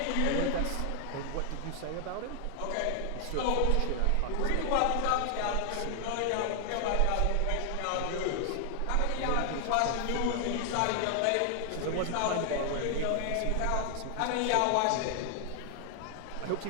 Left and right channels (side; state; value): both; different; correlation 0.00